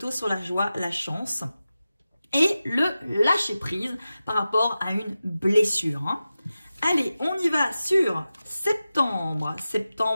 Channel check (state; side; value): inverted; both; correlation -0.94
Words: sur la joie, la chance et le lâcher prise par rapport à une blessure. Hein. Allez, on y va sur septembre.